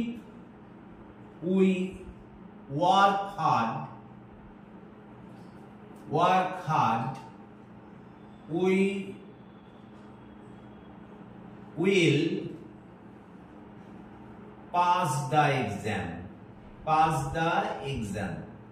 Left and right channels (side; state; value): both; identical; correlation 1.00